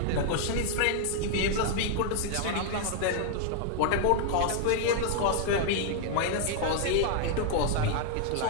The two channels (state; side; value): different; both; correlation 0.00